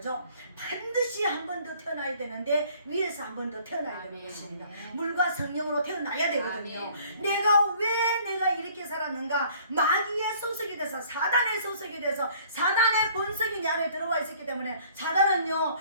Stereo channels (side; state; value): both; inverted; correlation -0.56